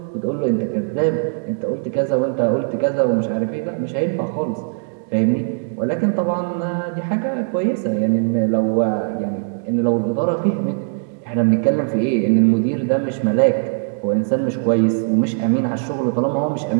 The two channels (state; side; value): silent; left; digital silence